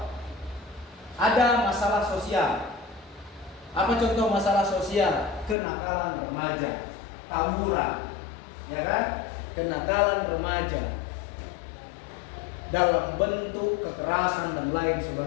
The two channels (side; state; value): right; drops out; at 5.6 s